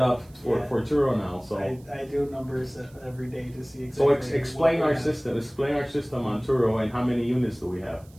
Yeah. for Turo now. So I do numbers every day to see so exactly. explain what we our have. system. Explain our system on Turo and how many units do we have?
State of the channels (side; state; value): right; noise; hiss, 29 dB below the sound